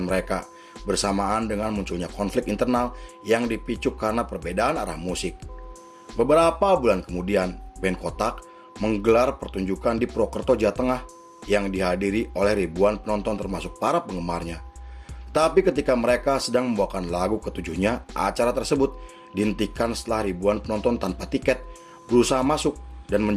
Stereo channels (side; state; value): both; identical; correlation 1.00